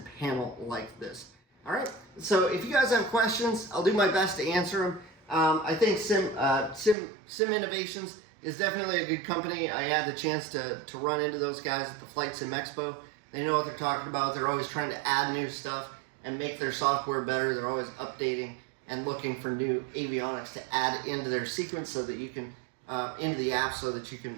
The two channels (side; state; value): left; drops out; at 7.0 s